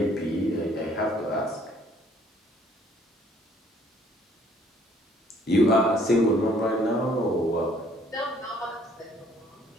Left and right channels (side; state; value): both; normal; correlation 0.61